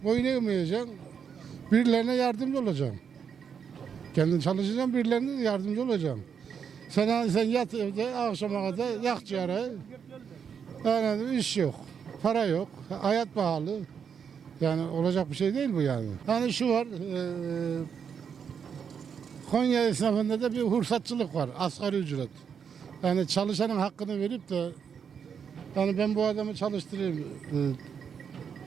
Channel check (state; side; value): quieter; left; 7.1 dB